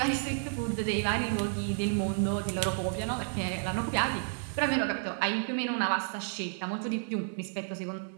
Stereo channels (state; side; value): silent; left; 57 dB below the other